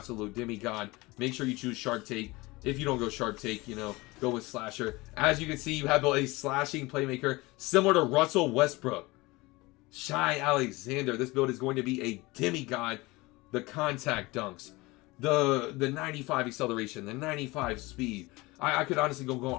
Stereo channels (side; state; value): right; quieter; 22.4 dB